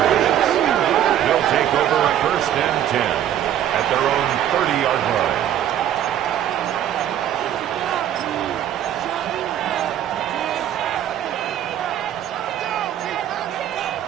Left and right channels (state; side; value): quieter; left; 10.9 dB